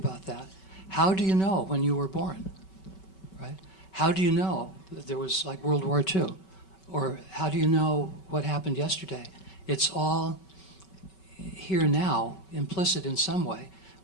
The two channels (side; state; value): right; late; 5.3 ms